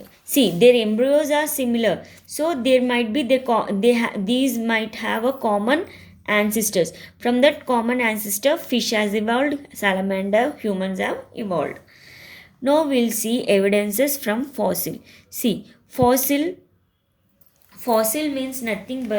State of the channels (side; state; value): both; identical; correlation 1.00